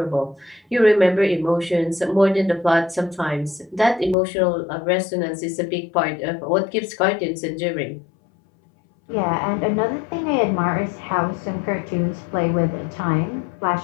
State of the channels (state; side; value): drops out; right; at 4.2 s